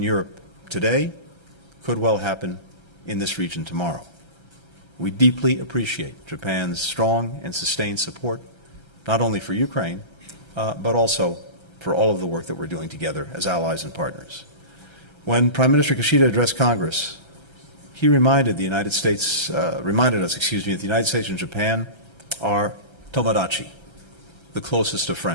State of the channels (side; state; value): right; late; 1.3 ms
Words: Europe today could well happen in this region tomorrow. We deeply appreciate Japan's strong and sustained support, not only for Ukraine, but also for all of the work that we're doing together as allies and partners. When Prime Minister Kishida addressed Congress, he reminded the United States, reminded us, that the United States and Japan are tomodachi, the closest of